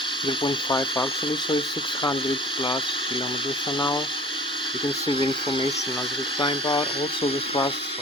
0.5 actually, so it's 600 plus kilometers an hour. You can see the information as we climb out. Also the thrust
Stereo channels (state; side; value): normal; both; correlation 0.45